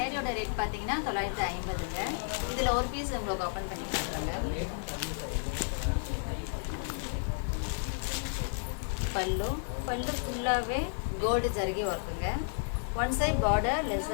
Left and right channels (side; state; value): right; silent; digital silence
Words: ரேட் பார்த்தீங்கன்னா 950ங்க. இதில் ஒரு பீஸ் உங்களுக்கு ஓப்பன் பண்ணி காட்டுறாங்க. பல்லு ஃபுல்லாகவே கோல்டு ஜரிகை ஒர்க்குங்க. ஒன் சைட் பார்டர்